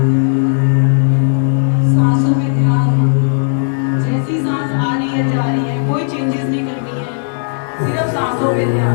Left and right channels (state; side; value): silent; right; digital silence